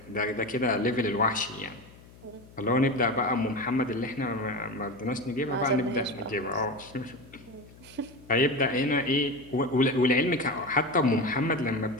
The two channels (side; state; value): left; noise; hum, 22 dB below the sound